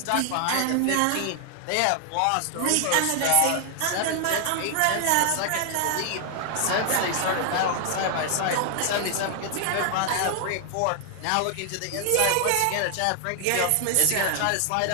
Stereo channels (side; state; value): both; different; correlation 0.00